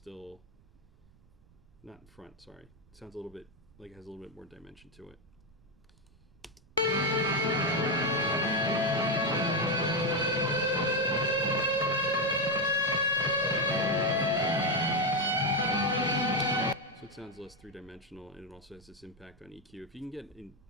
not in front, sorry. It sounds a little bit like it has a little bit more dimension to it. So it sounds less three-dimensional, and it also has this impact on EQ. If you can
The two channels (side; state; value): right; noise; rumble, 28 dB below the sound